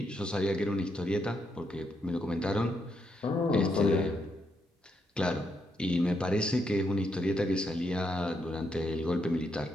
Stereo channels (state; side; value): normal; both; correlation 0.79